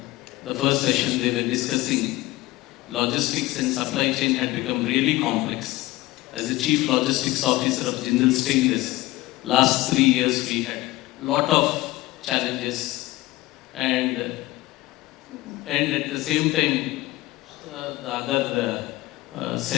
the first session they were discussing, logistics and supply chain had become really complex. As the Chief Logistics Officer of Jindal Stainless, last 3 years we had a lot of challenges and at the same time, the other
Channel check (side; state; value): right; quieter; 18.6 dB